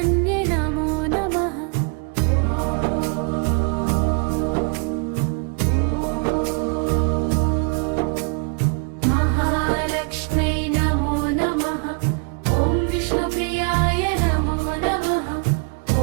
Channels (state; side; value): quieter; left; 34.3 dB